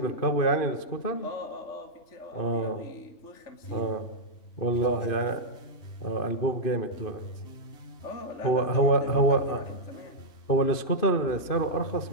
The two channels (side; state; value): right; late; 2.6 ms